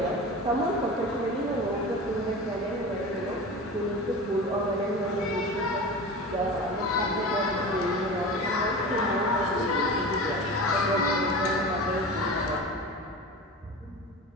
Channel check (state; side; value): normal; both; correlation 0.31